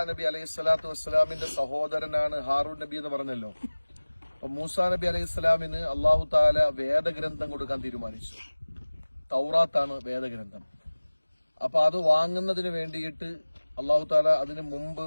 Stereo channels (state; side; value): inverted; both; correlation -1.00